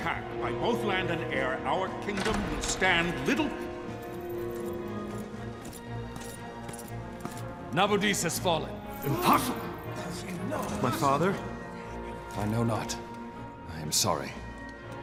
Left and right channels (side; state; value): both; identical; correlation 1.00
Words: by both land and air, our kingdom will stand little... Nabudis has fallen. Impossible! My father? I know not. I am sorry.